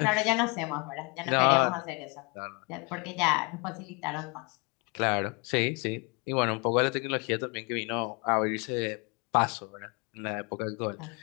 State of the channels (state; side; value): quieter; right; 30.5 dB